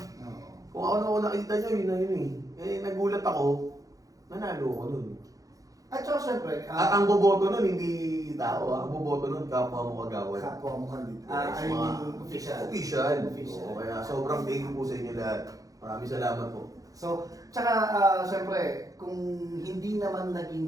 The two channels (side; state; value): left; late; 0.17 ms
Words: Kung ako nakita nyo, yun na yun nagulat ako, nanalo ako nun. At saka syempre, At ang boboto nun, hindi tao Ang boboto nun, kapwa mo kagawad. kapwa mo kandidato. Yes, I mean, official. Official. Official. Oo, kaya sobrang thank you po sa inyo lahat. Maraming salamat po. So, tsaka syempre, kung hindi naman